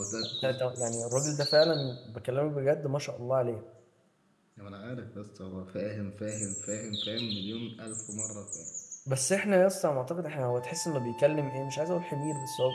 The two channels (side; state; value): both; identical; correlation 1.00